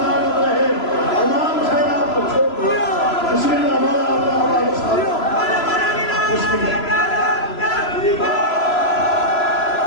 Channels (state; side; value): late; right; 3.0 ms